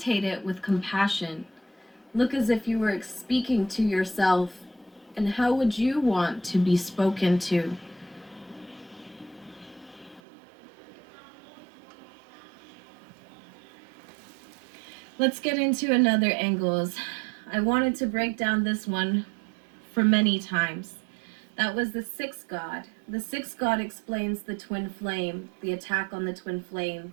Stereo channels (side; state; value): left; drops out; at 10.2 s